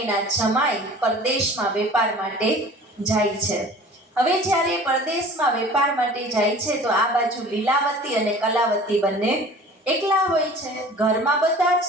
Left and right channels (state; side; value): normal; both; correlation 0.45